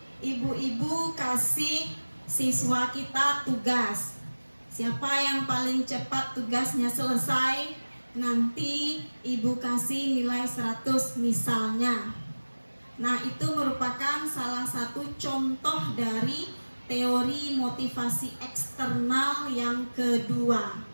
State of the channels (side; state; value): both; inverted; correlation -1.00